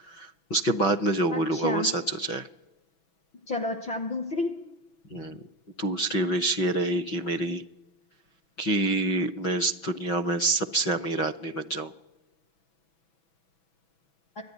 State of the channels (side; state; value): right; late; 6.1 ms